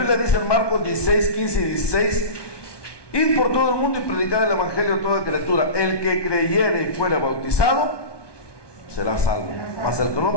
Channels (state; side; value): late; right; 1.2 ms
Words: dice en Marcos 16, 15 y 16: id por todo el mundo y predicad el evangelio a toda criatura. El que creyere y fuere bautizado será salvo, mas el que no